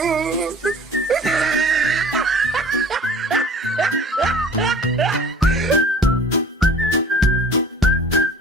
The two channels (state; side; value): normal; both; correlation 0.45